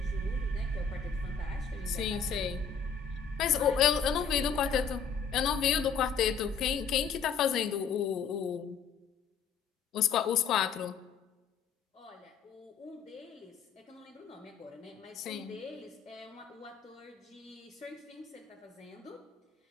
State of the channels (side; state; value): right; quieter; 6.2 dB